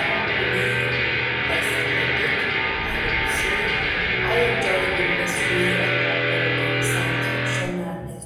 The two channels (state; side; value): identical; both; correlation 1.00